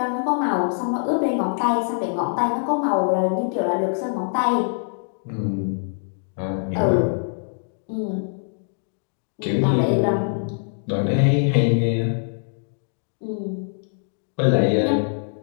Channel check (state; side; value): silent; right; digital silence